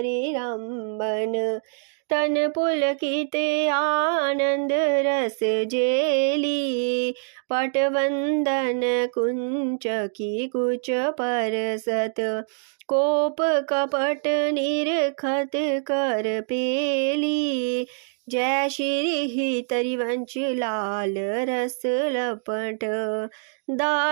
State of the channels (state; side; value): silent; left; digital silence